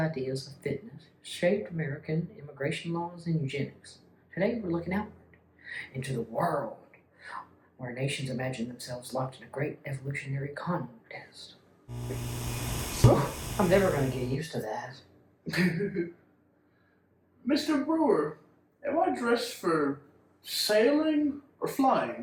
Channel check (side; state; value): both; identical; correlation 1.00